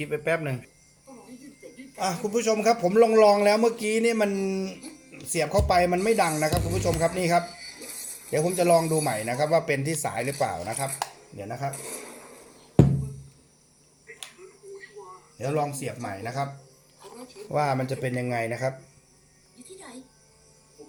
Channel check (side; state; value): both; identical; correlation 1.00